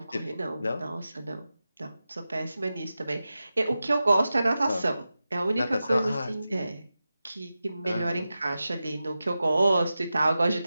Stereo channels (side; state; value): both; inverted; correlation -0.93